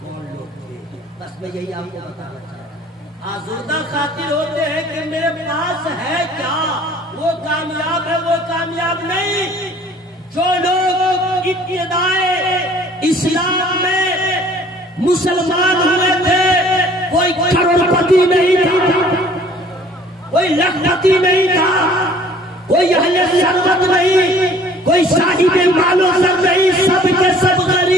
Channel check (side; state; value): both; normal; correlation 0.54